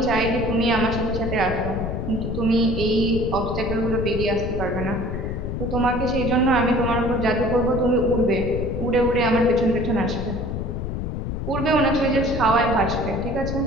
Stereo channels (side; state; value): left; noise; rumble, 4 dB below the sound